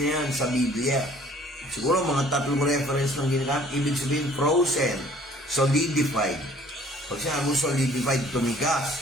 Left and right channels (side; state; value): both; normal; correlation 0.55